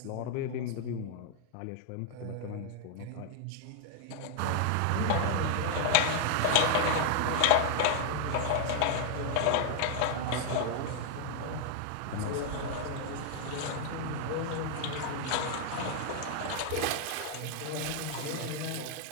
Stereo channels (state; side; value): different; both; correlation 0.00